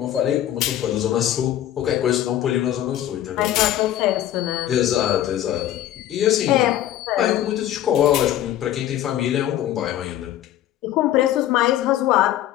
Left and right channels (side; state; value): right; quieter; 12.4 dB